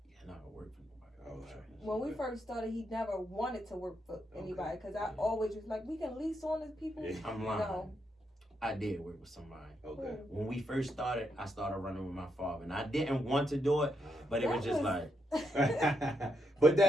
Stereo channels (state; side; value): normal; both; correlation 0.80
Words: Not gonna work for nobody. When we first started, he never wanted to work for anybody because I always was like, we can lease on these people. I'm lying. No. I did work with somebody. When we first started, I started running with my father, and I didn't want to do it, but it was just like. But